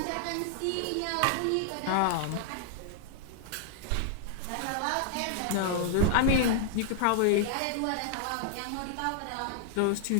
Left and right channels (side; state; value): both; different; correlation -0.01